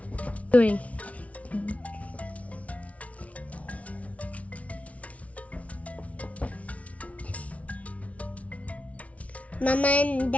Doing. Mama and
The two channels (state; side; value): late; right; 0.066 ms